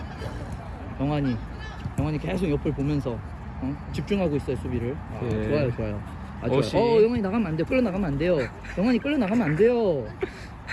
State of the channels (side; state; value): both; identical; correlation 1.00